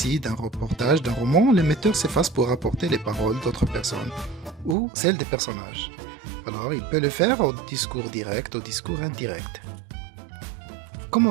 d'un reportage, d'un roman, l'émetteur s'efface pour rapporter les paroles d'autres personnes ou celles des personnages. Alors il peut le faire au discours direct, au discours indirect.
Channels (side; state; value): left; drops out; at 4.8 s